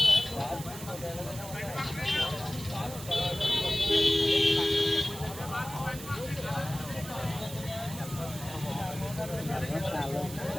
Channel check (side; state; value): right; noise; hiss, 12 dB below the sound